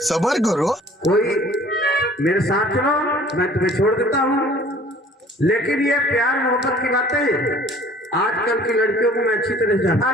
सबर करो। कोई मेरे साथ चलो, मैं तुम्हें छोड़ देता हूँ। लेकिन ये प्यार मोहब्बत की बातें आजकल की लड़कियों को मैं अच्छी तरह जानता हूँ।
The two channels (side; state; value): both; normal; correlation 0.51